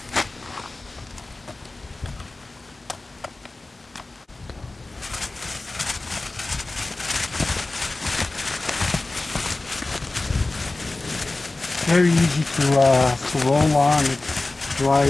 Very easy to roll on. It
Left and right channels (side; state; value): right; quieter; 3.1 dB